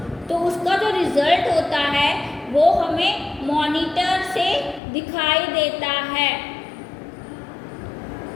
तो उसका जो रिजल्ट होता है वो हमें मॉनिटर से दिखाई देता है।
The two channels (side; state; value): right; drops out; at 4.8 s